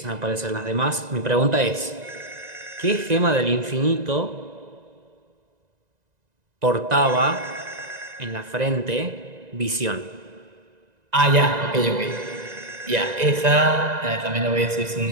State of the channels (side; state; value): left; late; 1.9 ms